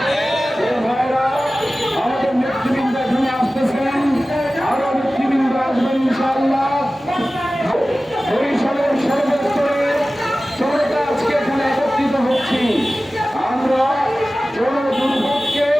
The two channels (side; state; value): both; normal; correlation 0.96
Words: ভাইরা, আমাদের নেতৃবৃন্দ এখানে আসতেছেন, আরো নেতৃবৃন্দ আসবেন ইনশাআল্লাহ। বরিশালের সর্বস্তরে জনতা আজকে এখানে একত্রিত হচ্ছি। আমরা